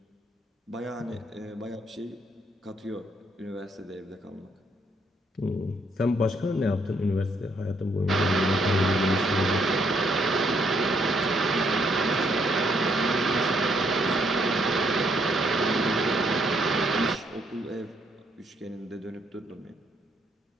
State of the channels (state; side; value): normal; both; correlation 0.71